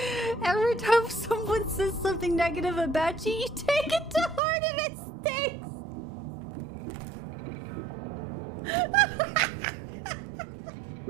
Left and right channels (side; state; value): left; drops out; at 4.4 s